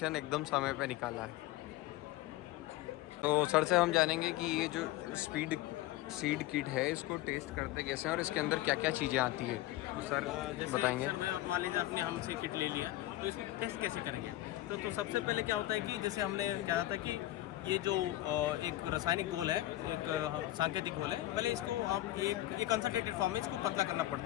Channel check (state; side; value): quieter; right; 15.9 dB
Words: एकदम समय पे निकाला है। तो सर से हम जानेंगे कि ये जो सीड किट है इसको टेस्ट करते कैसे हैं और इसके अंदर क्या क्या चीज़ें आती है, सर जैसे बताएंगे। सर भाई आप मान लीजिए आपने हमसे किट ले लिया तो इसको टेस्ट कैसे करेंगे। तो सबसे पहले क्या होता है कि जैसे हमने कहा था कि ये जो एक रासायनिक घोल है, एक सांकेतिक घोल है, पहले इसको आप एक कंसंट्रेटेड फॉर्म में इसको पतला करना